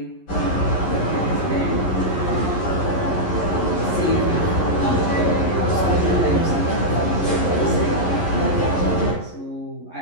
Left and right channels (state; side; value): late; right; 11 ms